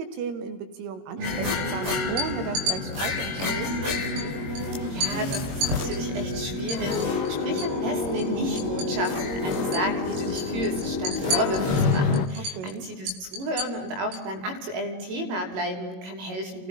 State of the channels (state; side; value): late; left; 22 ms